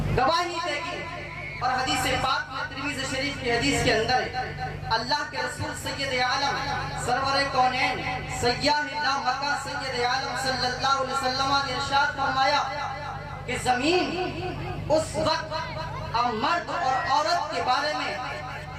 گواہی دے گی۔ اور حدیث پاک میں ترمذی شریف کی حدیث کے اندر اللہ کے رسول سید عالم سرور کونین سیاہ لا مکہ سید عالم صلی اللہ علیہ وسلم نے ارشاد فرمایا کہ زمین اس وقت مرد اور عورت کے بارے میں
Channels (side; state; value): both; identical; correlation 1.00